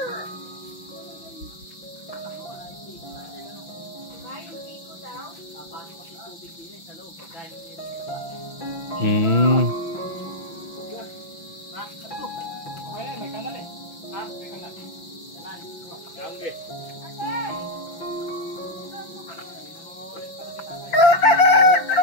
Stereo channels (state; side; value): late; right; 6.0 ms